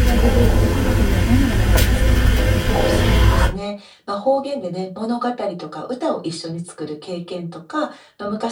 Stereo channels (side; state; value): both; identical; correlation 1.00